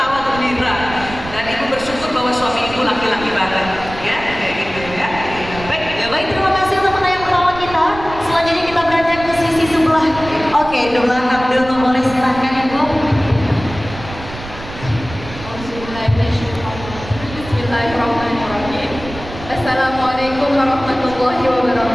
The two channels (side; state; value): right; noise; rumble, 13 dB below the sound